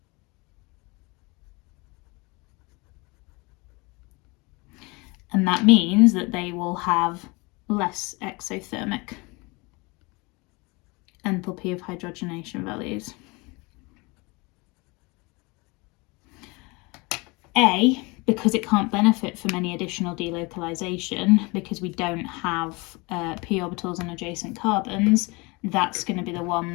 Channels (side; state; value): right; quieter; 26.5 dB